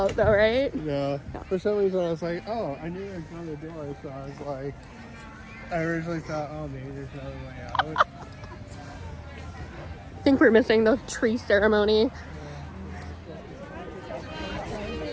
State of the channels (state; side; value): identical; both; correlation 1.00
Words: though, right? No. For some reason, I was like, oh, I knew there was another door, so I was like, I originally thought, oh, maybe there's another way out. I think we're missing the tree ceremony.